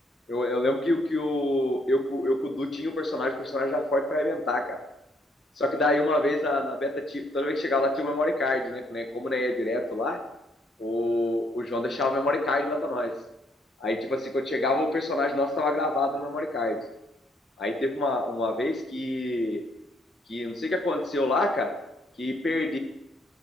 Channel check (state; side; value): normal; both; correlation 0.70